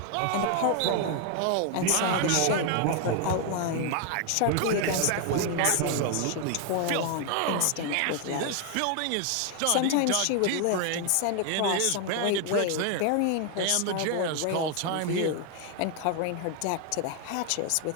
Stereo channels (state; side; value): different; both; correlation 0.00